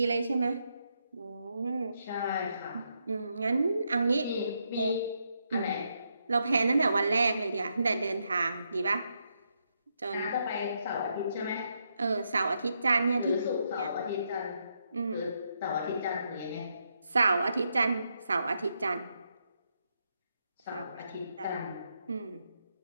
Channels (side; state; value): both; inverted; correlation -0.80